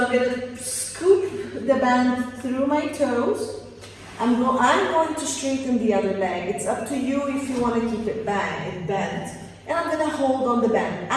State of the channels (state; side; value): identical; both; correlation 1.00